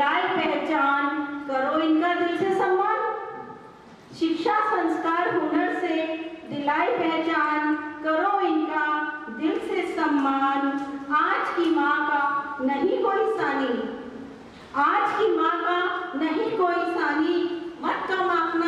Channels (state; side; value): identical; both; correlation 1.00